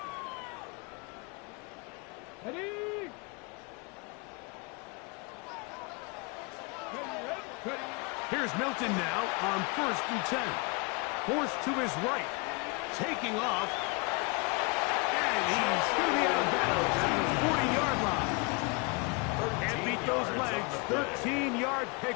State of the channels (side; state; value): right; quieter; 30.8 dB